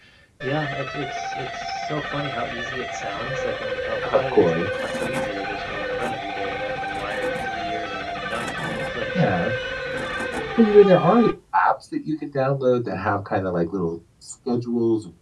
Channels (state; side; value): identical; both; correlation 1.00